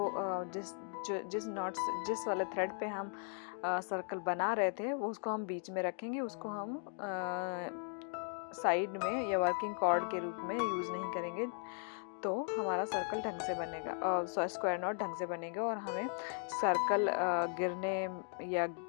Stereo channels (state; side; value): silent; right; 53 dB below the other